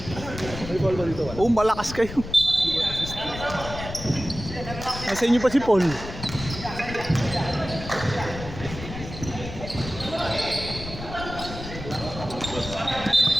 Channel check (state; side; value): noise; left; rumble, 10 dB below the sound